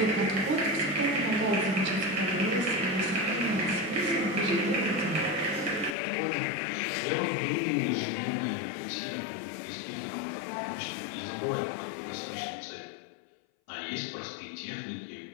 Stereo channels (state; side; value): drops out; right; at 6.0 s